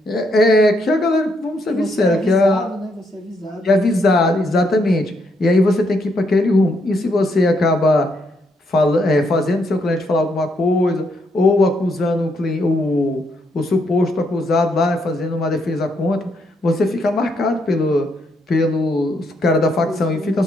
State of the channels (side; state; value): both; normal; correlation 0.76